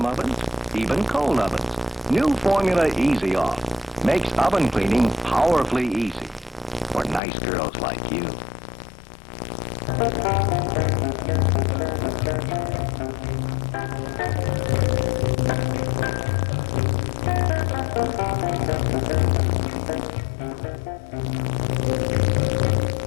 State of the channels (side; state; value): right; drops out; at 7.2 s